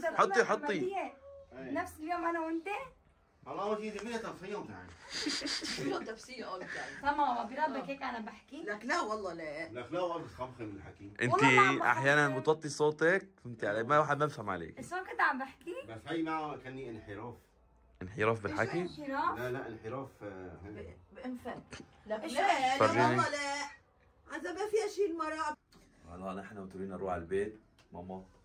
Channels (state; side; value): identical; both; correlation 1.00